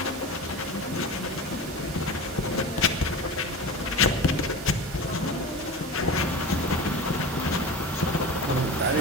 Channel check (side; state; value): both; normal; correlation 0.30